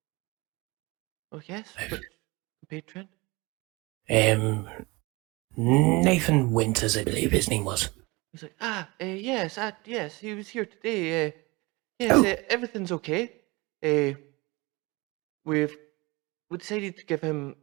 Oh, yes, which patron? Nathan Winters, I believe his name was. He's like, yes, he was here today. Yes, everything's okay. We decided to give him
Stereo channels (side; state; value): left; quieter; 24.5 dB